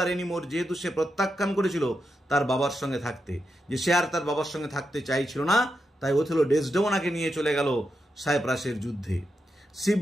anymore, যেহেতু সে প্রত্যাখ্যান করেছিল তার বাবার সঙ্গে থাকতে, যে সে আর তার বাবার সঙ্গে থাকতে চাইছিল না, তাই ওথেলো ডেসডেমোনাকে নিয়ে চলে গেল সাইপ্রাসের যুদ্ধে। সি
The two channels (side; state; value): both; normal; correlation 0.86